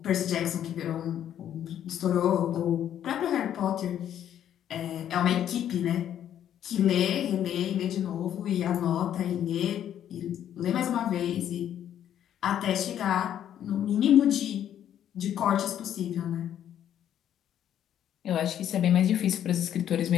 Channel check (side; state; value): right; quieter; 10.4 dB